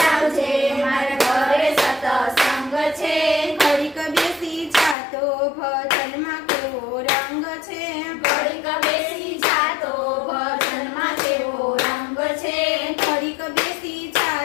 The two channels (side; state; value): right; drops out; at 5.0 s